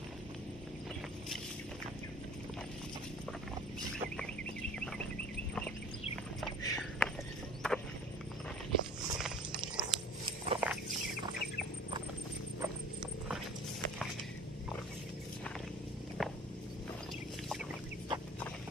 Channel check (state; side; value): normal; both; correlation 0.45